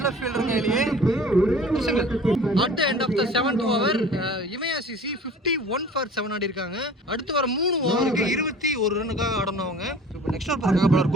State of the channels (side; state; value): both; normal; correlation 0.45